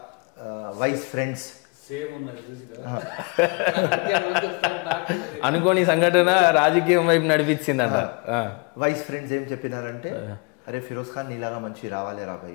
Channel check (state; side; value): quieter; right; 32.0 dB